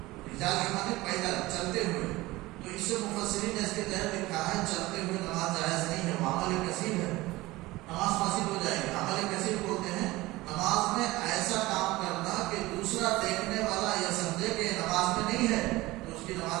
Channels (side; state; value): left; quieter; 19.5 dB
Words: رجال کے معنی پیدل چلتے ہوئے. تو اس سے مفسرین نے اس کے تحت لکھا ہے چلتے ہوئے نماز جائز نہیں ہے، وہ عمل کثیر ہے، نماز فاسد ہو جائے گی. عمل کثیر بولتے ہیں نماز میں ایسا کام کرنا کہ دوسرا دیکھنے والا یہ سمجھے کہ نماز میں نہیں ہے تو اس کی